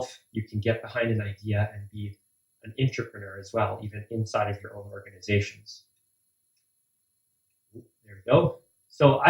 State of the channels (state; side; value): identical; both; correlation 1.00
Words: You can get behind an idea and be an entrepreneur as well, even inside of your own organizations. There we go. So I